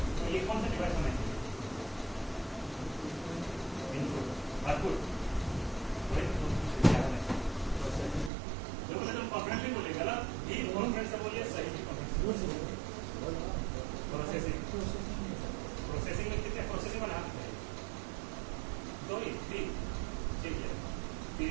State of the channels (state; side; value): drops out; left; at 8.3 s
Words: तो ये कौन सा डिवाइस होना चाहिए? इनपुट आउटपुट तुम कॉन्फिडेंटली बोले, गलत भी कॉन्फिडेंस से बोलिए, सही भी कॉन्फिडेंस। प्रोसेसिंग में कितने प्रोसेसिंग बना? दो ही, तीन, ठीक है,